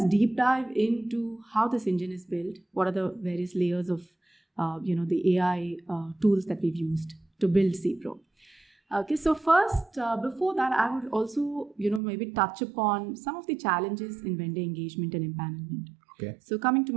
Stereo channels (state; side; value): drops out; left; at 12.0 s